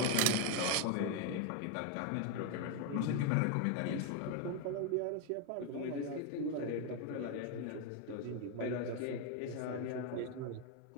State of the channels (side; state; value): both; different; correlation 0.01